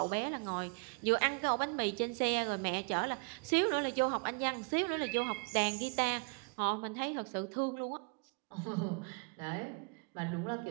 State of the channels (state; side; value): quieter; left; 33.7 dB